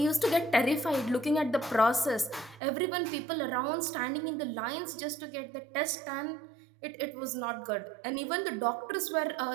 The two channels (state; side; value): drops out; left; at 2.6 s